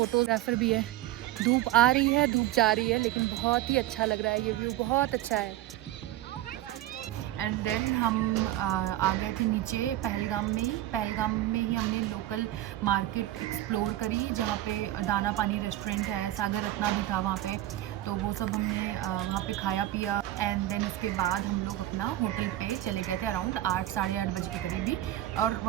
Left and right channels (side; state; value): left; quieter; 14.6 dB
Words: भी है। धूप आ रही है, धूप जा रही है, लेकिन बहुत ही अच्छा लग रहा है। ये व्यू बहुत अच्छा है। एंड देन हम आ गए थे नीचे पहलगाम में ही हमने लोकल मार्केट एक्सप्लोर करी, जहाँ पे दाना पानी रेस्टोरेंट है, सागर रत्ना भी था वहाँ पे। तो वो सब हमने वहाँ पे खाया पिया, एंड देन उसके बाद हम लोग अपना होटल पे चले गए थे अराउंड 8 साढ़े 8 बजे के करीब ही, और